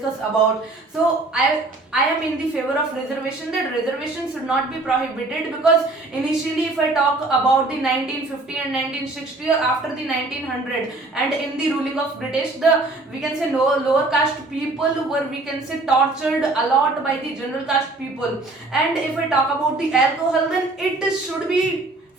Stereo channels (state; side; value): quieter; left; 3.1 dB